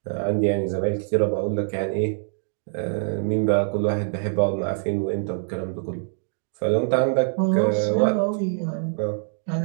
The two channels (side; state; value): left; silent; 62 dB below the other